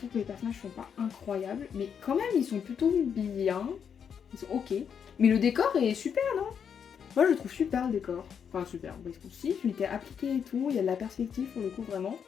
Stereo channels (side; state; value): right; quieter; 7.5 dB